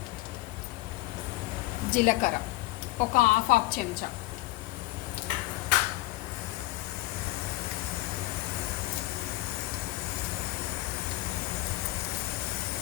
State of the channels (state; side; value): quieter; right; 19.2 dB